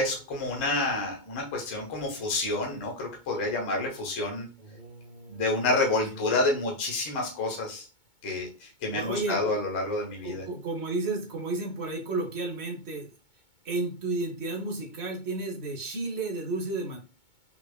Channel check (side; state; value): right; late; 2.2 ms